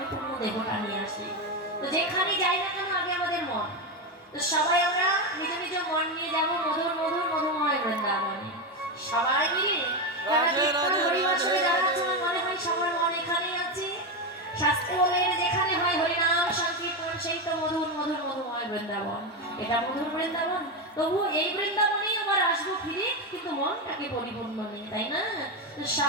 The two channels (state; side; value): normal; both; correlation 0.11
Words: দেহটা নিয়ে আসি। তো যেখানে যাই না কেন আগে আমাদের মন। তো সবাই আমরা নিজ নিজ মন নিয়ে যাবো মধুর মধুর মধুময় বৃন্দাবনে সবাই মিলে। হরিবাসরে যারা আছে আমার মনে হয় সবার মন এখানেই আছে। শাস্ত্রে বলে যেখানে হয় হরিনাম সংকীর্তন সেই তো মধুর মধুর মধুময় বৃন্দাবন। এটা মধুর বৃন্দাবন, তবু এই বৃন্দাবনেই আবার আসবো ফিরে, কিন্তু মনটাকে পরিপূর্ণ নেই, তাই না? তো